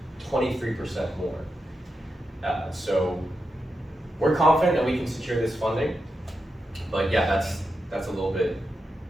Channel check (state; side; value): normal; both; correlation 0.87